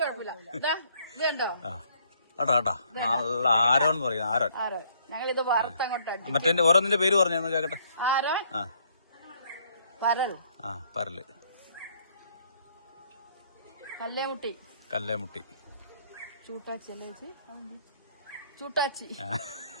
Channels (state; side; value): inverted; both; correlation -0.65